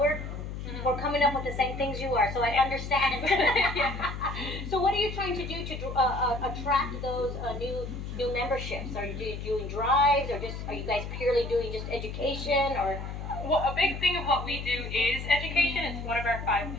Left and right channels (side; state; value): left; noise; hum, 7 dB below the sound